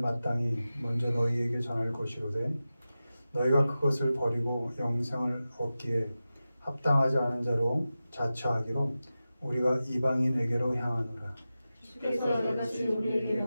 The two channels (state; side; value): inverted; both; correlation -0.94